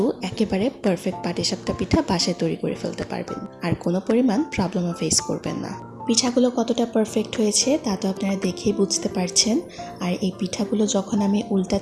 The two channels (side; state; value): both; identical; correlation 1.00